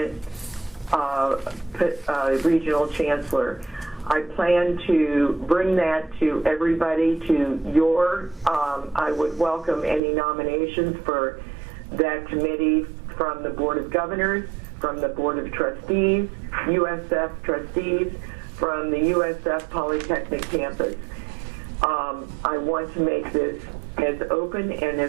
regional chancellor. I plan to bring that to everybody, to your, I would welcome any nominations for that committee from the Board of Governors, from the Board of Trustees, USF trustees, from the USF Polytechnic campus. I want to make this as open and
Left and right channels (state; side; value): drops out; left; at 10.0 s